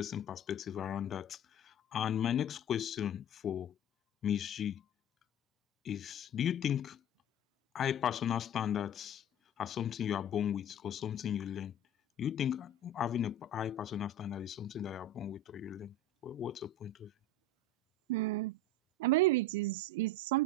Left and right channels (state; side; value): normal; both; correlation 0.35